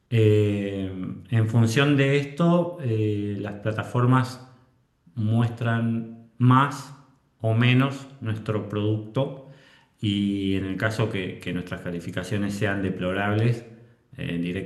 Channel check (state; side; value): identical; both; correlation 1.00